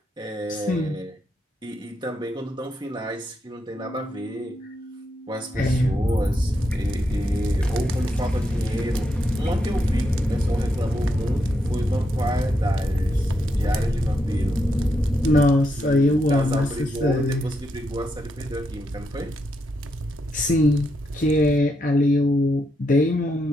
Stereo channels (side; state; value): both; normal; correlation 0.81